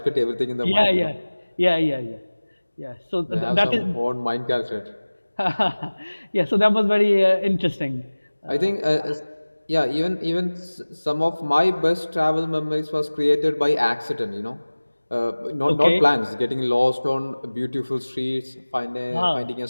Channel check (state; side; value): inverted; both; correlation -1.00